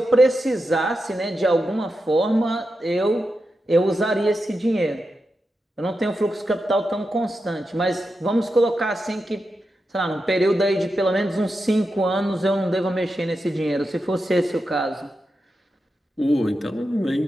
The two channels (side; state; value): both; normal; correlation 0.89